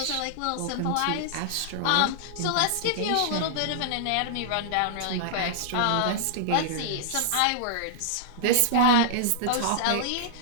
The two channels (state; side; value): different; both; correlation -0.01